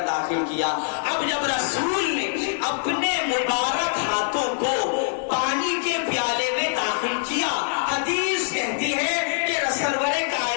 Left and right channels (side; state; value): right; silent; 62 dB below the other